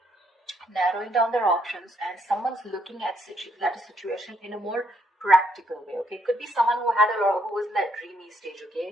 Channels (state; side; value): normal; both; correlation 0.73